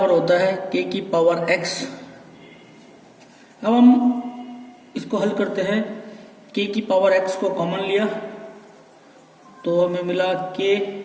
होता है k की पावर x। अब हम इसको हल करते हैं। k की पावर x को कॉमन लिया तो हमें मिला k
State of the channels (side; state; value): both; identical; correlation 1.00